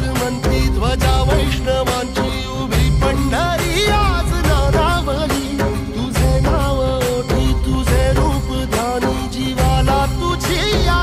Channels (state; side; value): identical; both; correlation 1.00